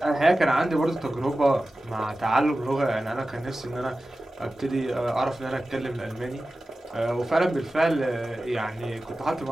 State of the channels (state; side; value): normal; both; correlation 0.95